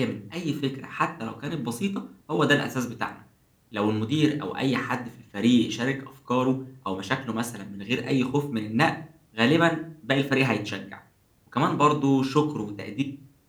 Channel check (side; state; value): both; identical; correlation 1.00